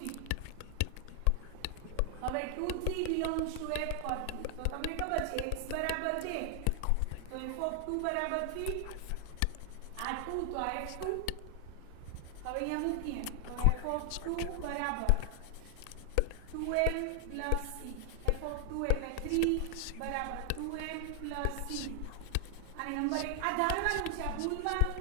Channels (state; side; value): different; both; correlation 0.00